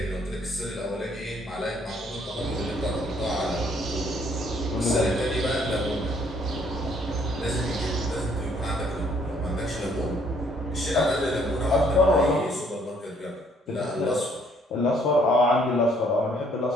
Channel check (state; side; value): normal; both; correlation 0.64